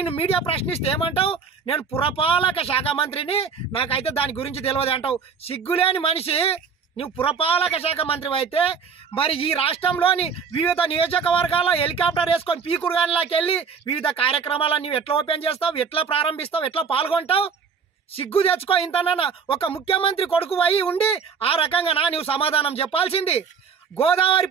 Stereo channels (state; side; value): quieter; left; 5.9 dB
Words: మీడియా ప్రశ్నిస్తే ఏమంటావు? నేను పురపాలక శాఖ మంత్రిని, నాకైతే దాని గురించి తెలియదు అంటావు. సిగ్గులేని మనిషి నువ్వు పురపాలక శాఖ మంత్రి అయితే మరి ఈ రాష్ట్రంలోని వివిధ నియోజకవర్గాల్లో హెలికాప్టర్ వేసుకొని పీకుడుగానిలోకి వెళ్ళి వివిధ కార్యక్రమాలను నువ్వు ఎట్లా ఓపెన్ చేస్తావు, ఎట్లా ప్రారంభిస్తావు, ఎట్లా పాల్గొంటావు? సిగ్గు తెచ్చుకో. ఇంతనా ఒక ముఖ్యమంత్రి కొడుకు అయి ఉండి ఆ రకంగా నువ్వు సమాధానం చెప్పాల్సింది. గోదావరి